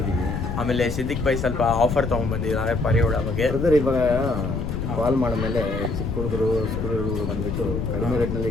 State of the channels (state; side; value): noise; left; rumble, 3 dB below the sound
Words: ಆಮೇಲೆ ಸಿದ್ದಿಕ್ ಬೈ ಸ್ವಲ್ಪ ಆಫರ್ ತೊಗೊಂಡ್ಬಂದಿದ್ದಾರೆ ಪರಿಯೋಳ ಬಗ್ಗೆ. ಬ್ರದರ್, ಇವಾಗ ಕಾಲ್ ಮಾಡಿದ್ಮೇಲೆ ಚಿಕ್ಕ ಹುಡುಗರು ಸ್ಕೂಲ್ ಹುಡುಗರು ಬಂದುಬಿಟ್ಟು ಕಡಿಮೆ ರೇಟ್ನಲ್ಲಿ